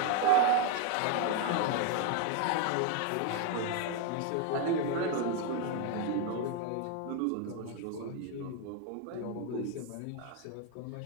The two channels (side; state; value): both; different; correlation 0.01